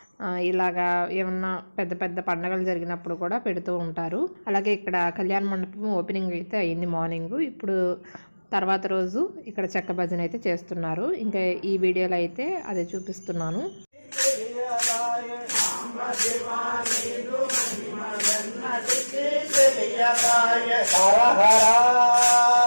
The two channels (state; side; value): inverted; both; correlation -1.00